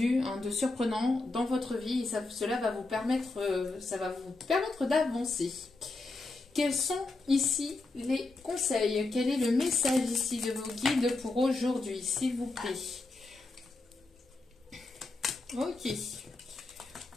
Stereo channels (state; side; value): quieter; right; 3.3 dB